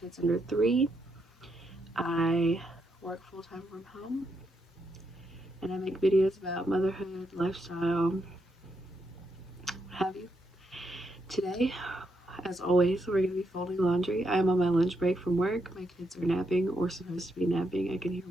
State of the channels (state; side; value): normal; both; correlation 0.80